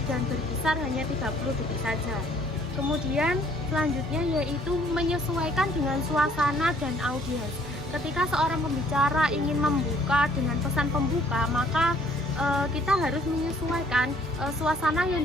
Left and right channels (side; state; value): both; normal; correlation 0.60